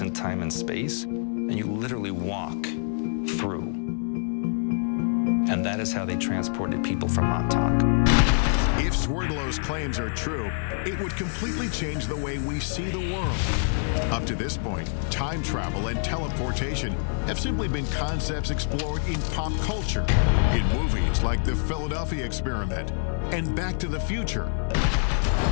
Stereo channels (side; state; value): right; silent; digital silence